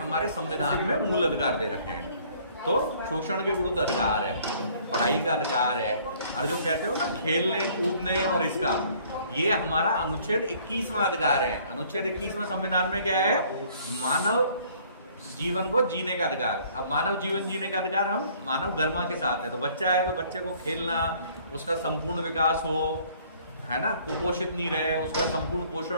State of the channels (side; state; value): both; inverted; correlation -0.58